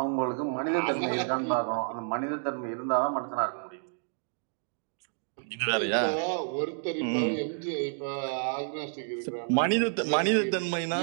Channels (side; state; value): left; silent; digital silence